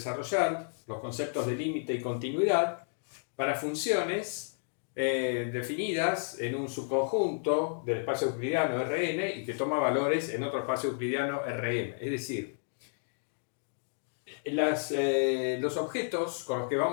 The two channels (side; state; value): right; silent; digital silence